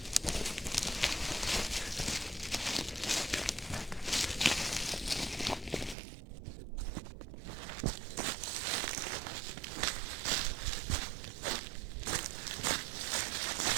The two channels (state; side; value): drops out; left; at 6.0 s